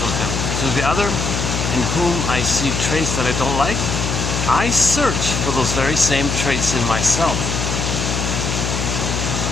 him. To the other, in whom I see traits that I don't like, I search for those very same traits in myself."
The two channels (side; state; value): left; noise; hum, 2 dB below the sound